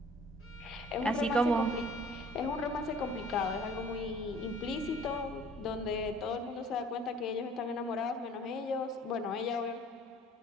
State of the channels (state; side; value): normal; both; correlation 0.52